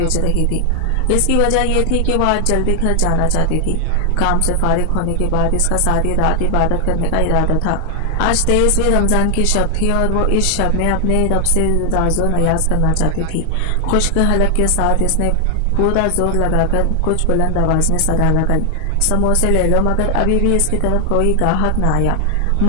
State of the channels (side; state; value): both; different; correlation 0.00